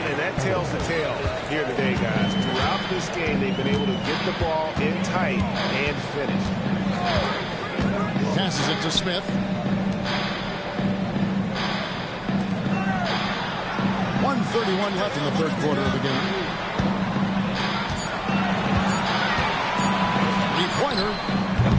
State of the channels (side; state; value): both; identical; correlation 1.00